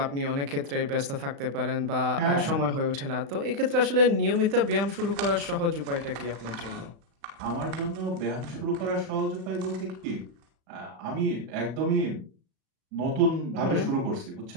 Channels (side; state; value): left; late; 35 ms